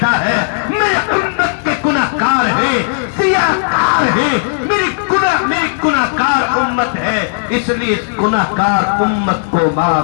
ہے, میرے امت کے گناہگار ہیں, سیاہکار ہیں, میری گناہگار امت ہے, اس لیے اس گناہگار امت کو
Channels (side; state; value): right; silent; digital silence